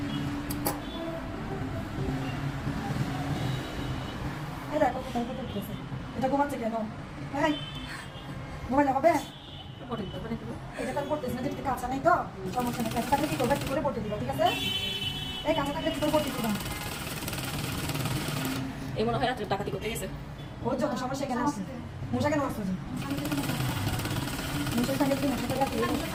দেখো কোথায় কোথায় উঠেছে এটা ঘুমাচ্ছে কেন হ্যাঁ ঘুমাইলে হবে এটা তার পড়তেছে না যেটা কাঁচা নেই তো সমস্যা নেই কাঁচা থাকলে কি করবে কি করে পড়তে দিবা ঠিক আছে এই কাঁচা থাকলে কি করে পড়তে দিবা এই মনে হয় রাত্রে ডাকাতি করতে গেছে ওর যত সমস্যা কেন আসছে মশা কেন আসছে মশার সঙ্গে কি মশা থাকে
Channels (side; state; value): both; identical; correlation 1.00